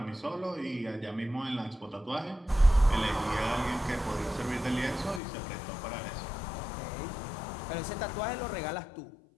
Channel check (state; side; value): drops out; right; at 5.2 s